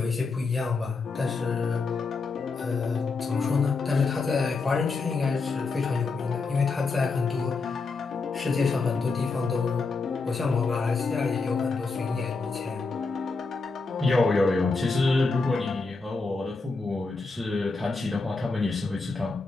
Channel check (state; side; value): quieter; right; 4.1 dB